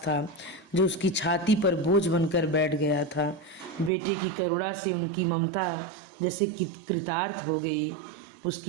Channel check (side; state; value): left; drops out; at 3.9 s